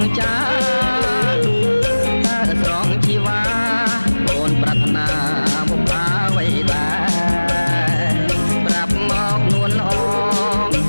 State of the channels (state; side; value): inverted; both; correlation -1.00